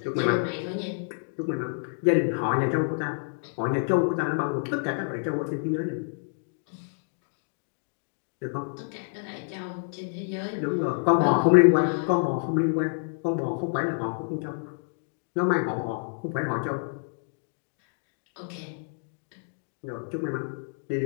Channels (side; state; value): right; silent; 59 dB below the other